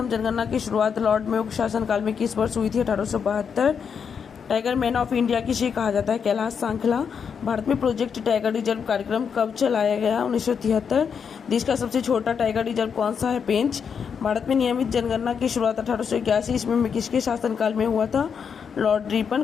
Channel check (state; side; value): quieter; right; 6.8 dB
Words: जनगणना की शुरुआत लॉर्ड मेयो के शासनकाल में किस वर्ष हुई थी? 1872। टाइगर मैन ऑफ इंडिया किसे कहा जाता है? कैलाश सांखला। भारत में प्रोजेक्ट टाइगर रिजर्व कार्यक्रम कब चलाया गया? 1973। देश का सबसे छोटा टाइगर रिजर्व कौन सा है? पेंच। भारत में नियमित जनगणना की शुरुआत 1881 ईस्वी में किसके शासनकाल में हुआ था? Lord Ripon.